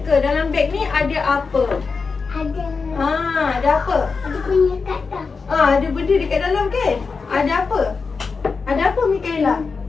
dalam beg ni ada apa? Ada. Ada apa? Ada punya kat tak? Ada benda dekat dalam kan? Ada apa? Ada apa Mikaela?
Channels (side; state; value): right; quieter; 4.8 dB